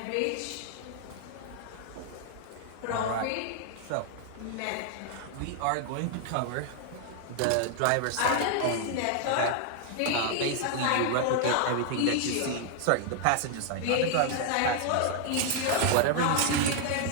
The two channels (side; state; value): both; different; correlation 0.00